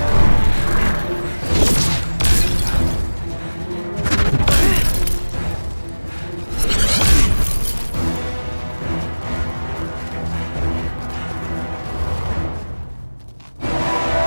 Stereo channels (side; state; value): both; inverted; correlation -1.00